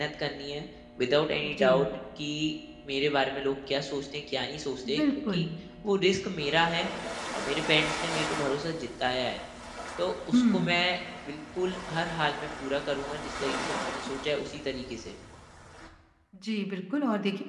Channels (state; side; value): identical; both; correlation 1.00